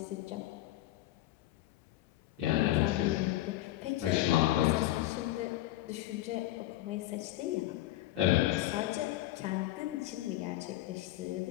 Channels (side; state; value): right; quieter; 15.3 dB